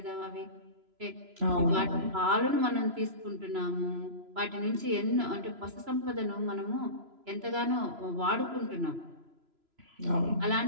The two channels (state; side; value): late; left; 3.0 ms